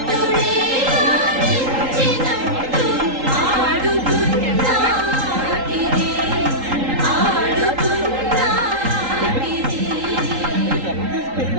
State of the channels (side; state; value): left; late; 3.8 ms